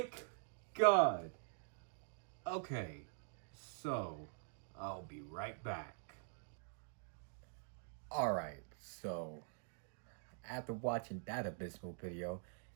God. Okay, so I'll be right back. Alright, so after watching that abysmal video,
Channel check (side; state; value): left; silent; digital silence